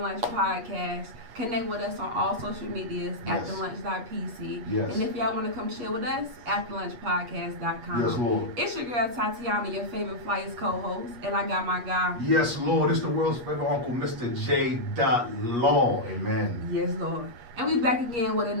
Podcast. Connect with us on all social medias, afterlunch.pc. Yes. And if y'all want to come chill with us, afterlunchpodcast.com. Yes, Lord. It's your girl Tatiana, your favorite Flyers co-host, and I got my guy. Yes, Lord. It's the world's favorite uncle, Mr. J.Law. Amen. Yes, Lord. And we back again with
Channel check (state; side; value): late; left; 8.4 ms